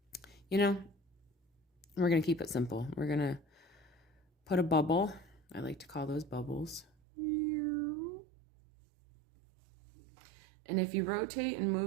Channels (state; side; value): drops out; left; at 6.9 s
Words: You know, we're going to keep it simple. We're going to put a bubble. I like to call those bubbles. And if you rotate and